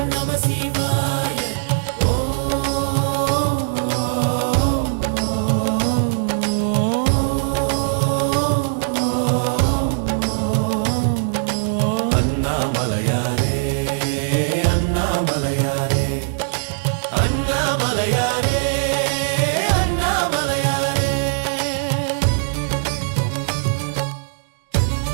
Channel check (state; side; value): silent; left; digital silence